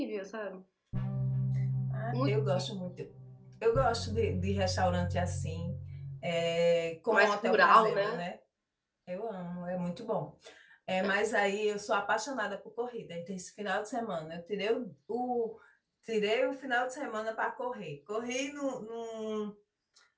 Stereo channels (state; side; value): identical; both; correlation 1.00